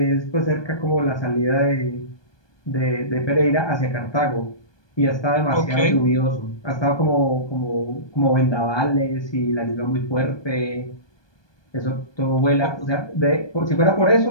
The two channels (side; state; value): right; late; 1.2 ms